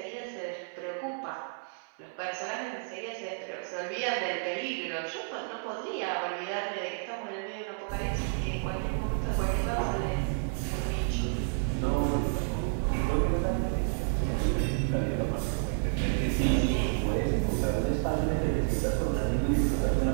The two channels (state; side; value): silent; left; 57 dB below the other